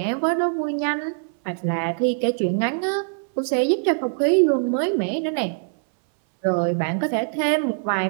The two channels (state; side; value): silent; left; 64 dB below the other